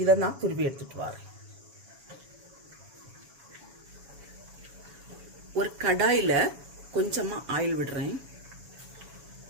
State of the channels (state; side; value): late; left; 7.1 ms